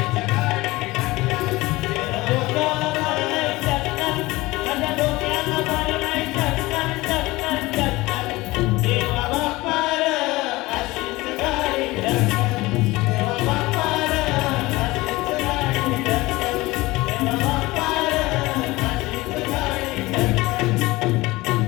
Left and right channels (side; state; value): right; quieter; 20.4 dB